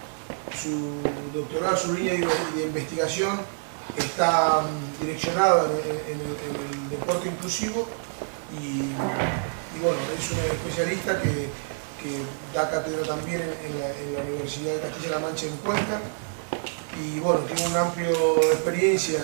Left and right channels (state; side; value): silent; left; digital silence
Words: Su doctorado, su línea de investigación está direccionada en el deporte inclusivo y bueno, es un especialista que da cátedra también en la Universidad de Castilla-La Mancha en Cuenca y bueno, tiene una amplia experiencia